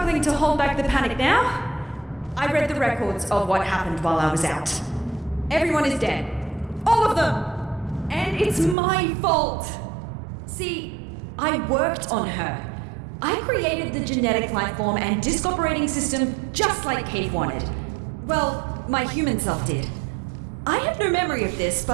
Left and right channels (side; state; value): left; drops out; at 8.8 s